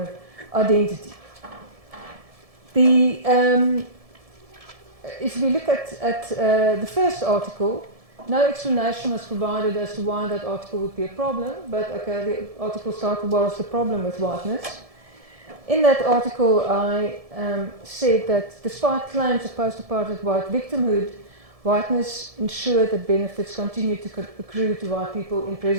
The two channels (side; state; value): left; late; 1.7 ms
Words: identity. If we look at the first article, no explanation was provided as to why that article would be a problem, but okay, the article started, what was the problem with whiteness? In that article, I said that despite claims of post-apartheid white victimhood, whiteness ensured that benefits continued to accrue to white people in